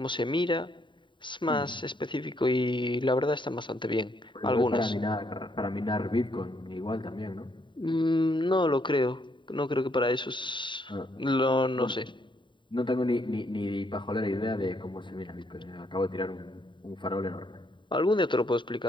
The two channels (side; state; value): right; late; 0.23 ms